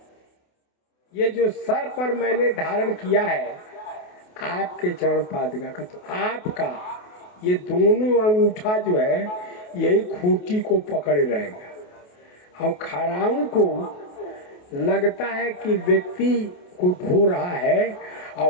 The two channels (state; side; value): late; right; 28 ms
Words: ये जो सर पर मैंने धारण किया है आपके चरण पादुका का, तो आपका ये दोनों अंगूठा जो है यही खूंटी को पकड़े रहेगा। और खड़ाऊ को लगता है कि व्यक्ति को ढो रहा है,